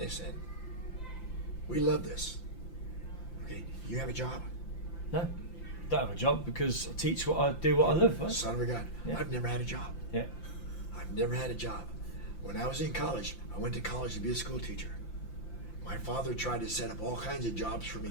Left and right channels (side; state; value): right; late; 5.8 ms